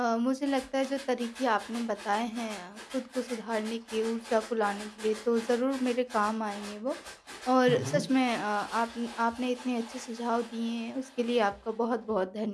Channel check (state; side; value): identical; both; correlation 1.00